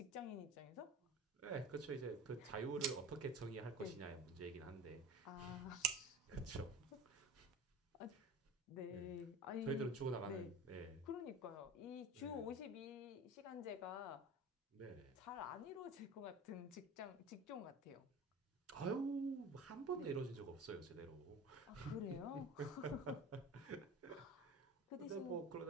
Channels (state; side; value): normal; both; correlation 0.35